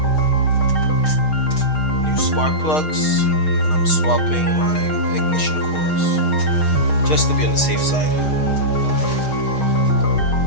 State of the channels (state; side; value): late; right; 6.4 ms